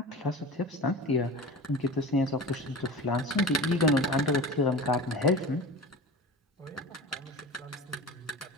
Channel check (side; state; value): both; normal; correlation 0.33